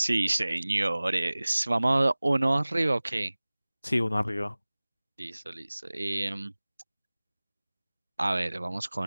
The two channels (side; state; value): both; inverted; correlation -0.99